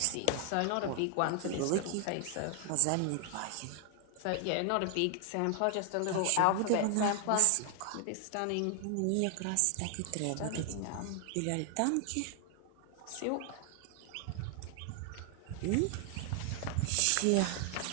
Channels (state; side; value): different; both; correlation 0.00